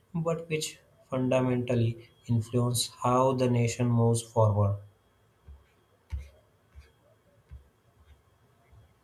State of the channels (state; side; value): identical; both; correlation 1.00